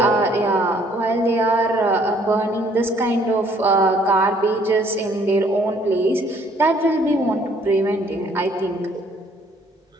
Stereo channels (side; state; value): both; normal; correlation 0.62